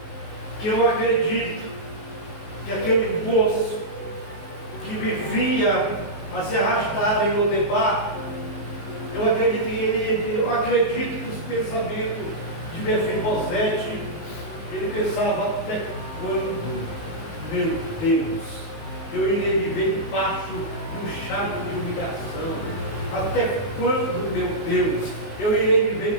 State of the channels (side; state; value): right; late; 19 ms